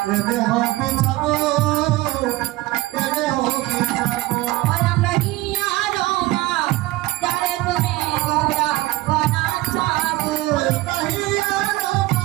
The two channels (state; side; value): quieter; left; 19.3 dB